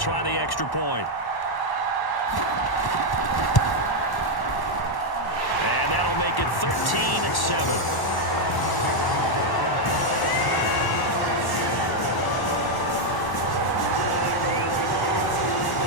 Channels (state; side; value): late; right; 1.1 ms